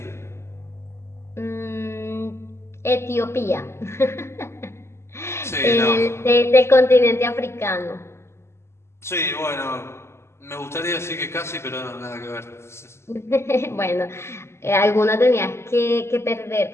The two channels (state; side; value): late; right; 0.13 ms